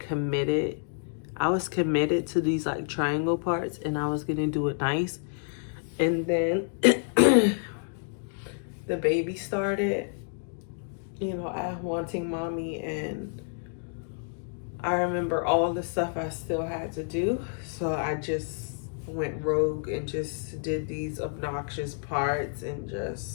I was committed to these like triangle parts and I was gonna do it nice. And then the baby started, I wanting mommy, and I remember all the stuff I still had to do. So I just went rogue and just did these obnoxious parts and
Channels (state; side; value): silent; right; digital silence